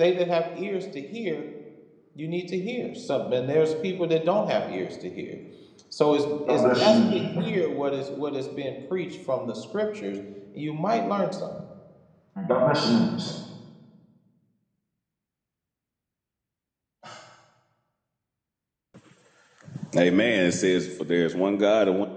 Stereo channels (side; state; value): both; identical; correlation 1.00